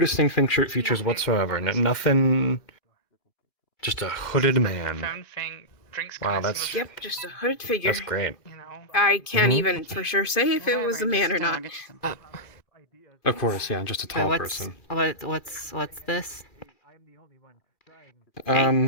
features whatsoever. Nothing. Just a hooded man. Wow, that's Yep, just a hooded figure. that's great. I can't even for sure say if it was a man or not. Of course, yeah, just a tall person. What's this?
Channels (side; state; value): right; late; 2.4 ms